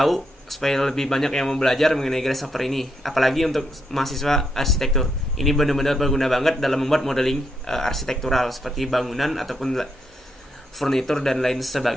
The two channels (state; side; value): normal; both; correlation 0.79